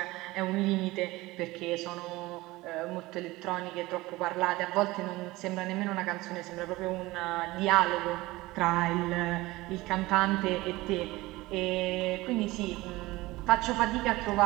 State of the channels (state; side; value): quieter; left; 19.9 dB